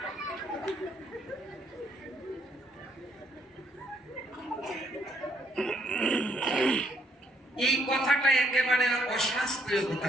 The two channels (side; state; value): both; normal; correlation 0.69